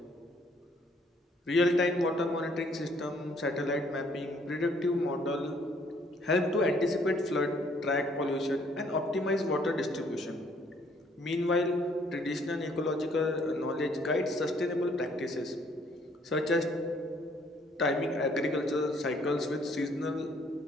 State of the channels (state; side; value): normal; both; correlation 0.64